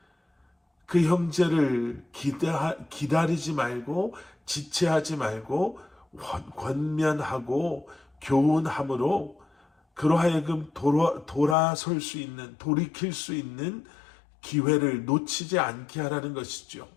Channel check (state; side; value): drops out; right; at 11.6 s